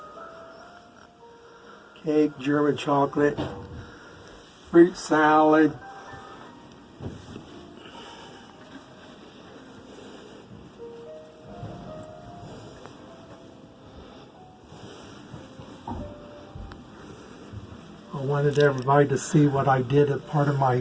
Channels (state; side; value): identical; both; correlation 1.00